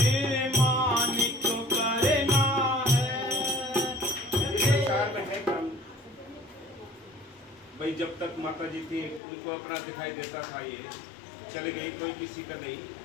मानिक करना है। इस संसार में है कम भाई, जब तक माता जी थी उनको अपना दिखाई देता था, ये चल गई, कोई किसी का नहीं।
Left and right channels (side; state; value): right; drops out; at 9.2 s